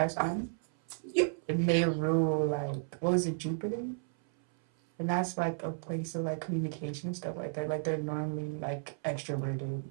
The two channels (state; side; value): silent; left; 56 dB below the other